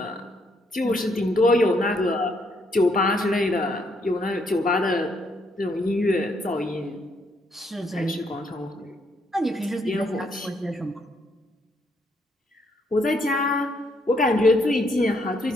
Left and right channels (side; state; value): both; normal; correlation 0.73